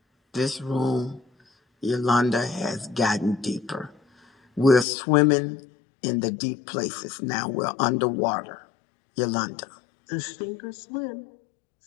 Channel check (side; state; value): right; drops out; at 4.9 s